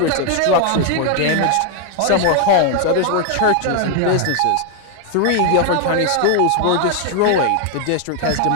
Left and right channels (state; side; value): different; both; correlation 0.00